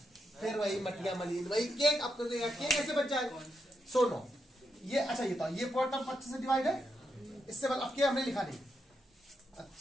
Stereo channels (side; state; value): both; normal; correlation 0.83